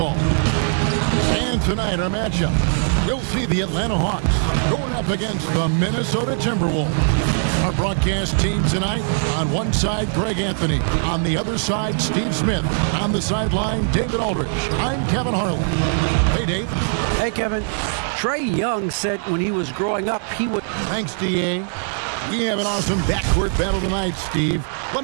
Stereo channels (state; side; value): silent; left; 65 dB below the other